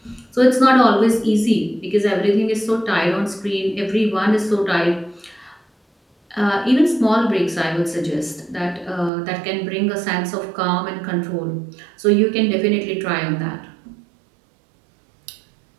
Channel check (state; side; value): drops out; left; at 9.1 s